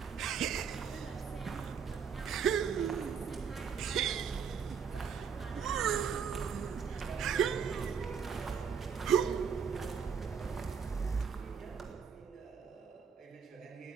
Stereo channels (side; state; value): left; quieter; 6.7 dB